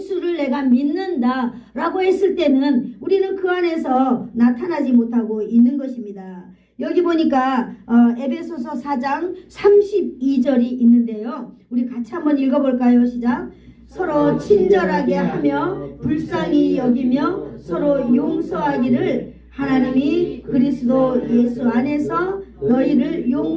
내가 믿는다 라고 했을 때는 우리는 그 안에서 나타나지 못하고 있는 것입니다. 여기 보니까 에베소서 4장 32절이 있는데요. 우리 같이 한번 읽어볼까요? 시작. 서로 친절하게 하며 불쌍히 여기며 서로 용서하기를 하나님이 그리스도 예수 안에서 너희를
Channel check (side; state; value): both; identical; correlation 1.00